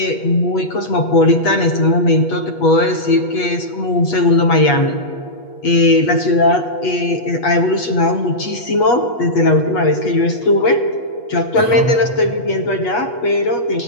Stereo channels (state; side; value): late; right; 8.3 ms